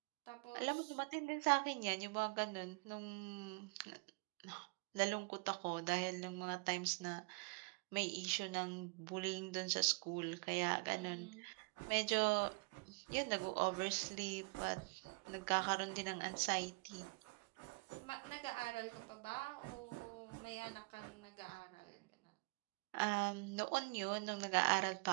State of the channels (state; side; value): quieter; left; 31.0 dB